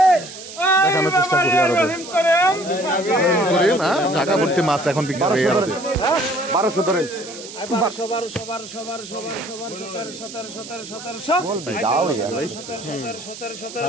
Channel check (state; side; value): noise; right; hiss, 13 dB below the sound